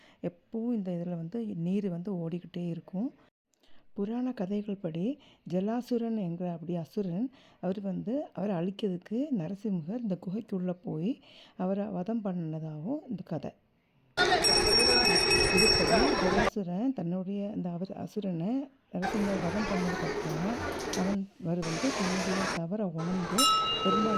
எப்போவும் இந்த இதில் நீர் ஓடிக்கிட்டே இருக்கும். புராண கதைகள் படி ஜலாசுரன் என்கிற அசுரன் அவரை அழிக்கிறதுக்கு நரசிம்மர் இந்த குகைக்குள்ளே போய் அவரை வதம் பண்ணினதாகவும் இந்த கதை. இதுபடி ஜலாசுரன் தன்னுடைய அசுரனை நரசிம்மர் வதம் பண்ணதுக்கப்புறமா தன்னுடைய தவறை உணர்ந்து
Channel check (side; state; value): both; identical; correlation 1.00